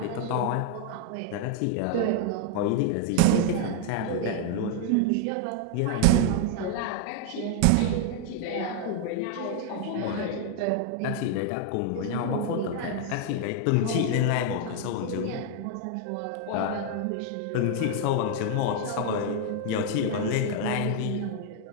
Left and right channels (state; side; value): different; both; correlation 0.00